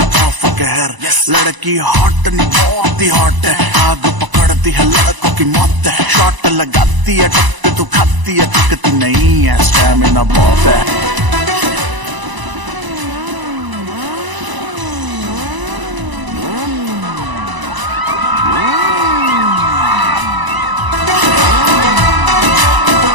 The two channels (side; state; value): left; late; 1.0 ms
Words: ऑफ कहर। लड़की हॉट नहीं बहुत ही हॉट है, आग पकड़ती है लड़कों की मौत है, शॉट लगाती है टक्कर तू खाती है, टकती नहीं है, स्टैमिना बहुत है।